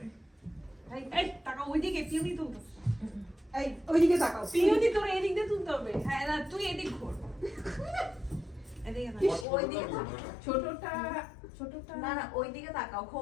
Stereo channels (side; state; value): right; drops out; at 9.5 s